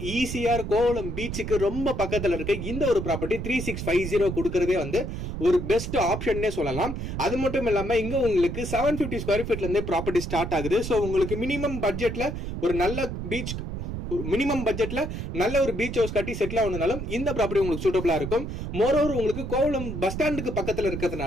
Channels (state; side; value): noise; right; rumble, 5 dB below the sound